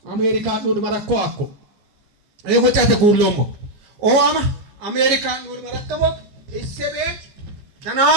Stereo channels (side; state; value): left; late; 15 ms